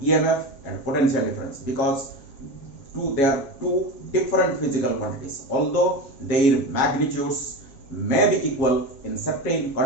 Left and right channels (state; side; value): late; right; 7.3 ms